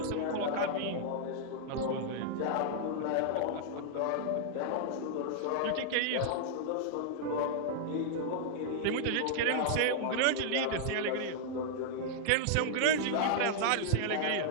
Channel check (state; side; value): different; both; correlation -0.01